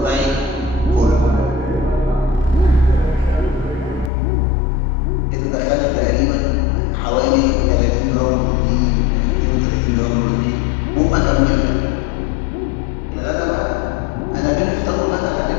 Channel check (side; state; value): right; drops out; at 4.1 s